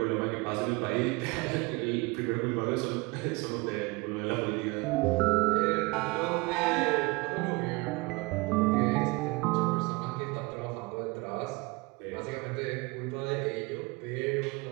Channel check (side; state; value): left; quieter; 25.7 dB